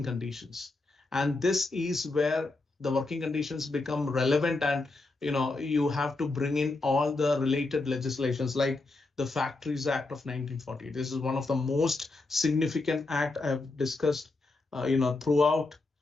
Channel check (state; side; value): quieter; right; 3.3 dB